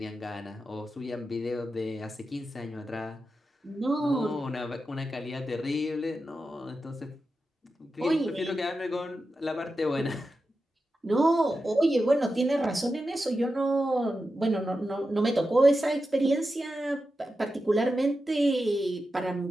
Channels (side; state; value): both; normal; correlation 0.90